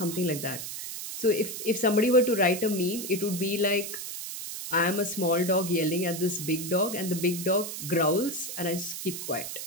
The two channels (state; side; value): noise; right; hiss, 7 dB below the sound